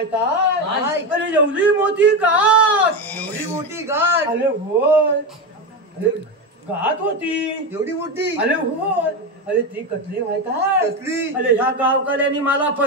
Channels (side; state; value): both; normal; correlation 0.15